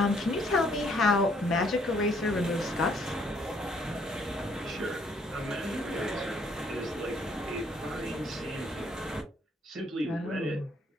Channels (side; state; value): both; normal; correlation 0.66